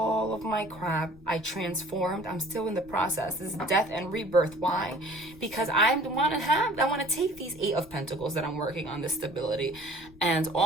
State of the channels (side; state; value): left; noise; rumble, 22 dB below the sound